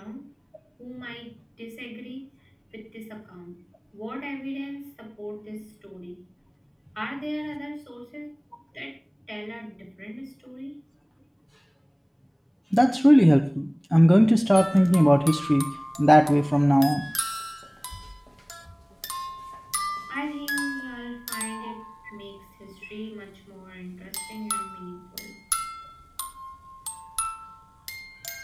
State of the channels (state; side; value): identical; both; correlation 1.00